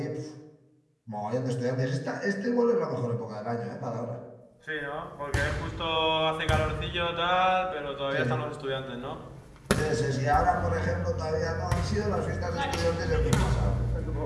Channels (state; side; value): identical; both; correlation 1.00